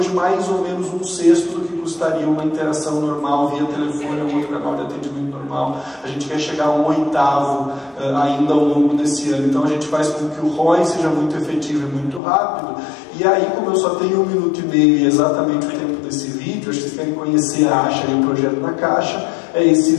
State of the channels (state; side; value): drops out; right; at 12.2 s